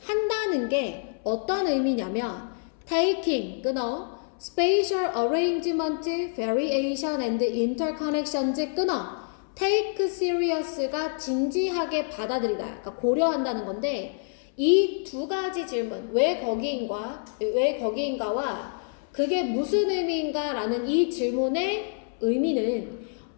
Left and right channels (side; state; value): right; silent; 60 dB below the other